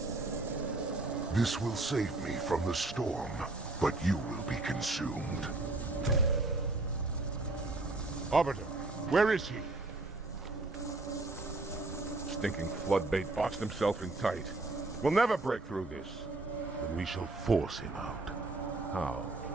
This will save me from the storm, but you will be consumed. Arbiter, where is he? Stinking floodbait boxed himself in tight. We'll never break through this. Then we shall force him out. How?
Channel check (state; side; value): quieter; left; 3.0 dB